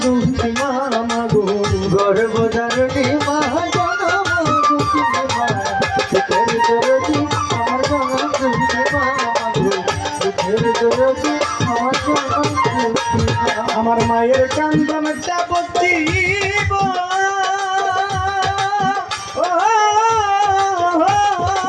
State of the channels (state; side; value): identical; both; correlation 1.00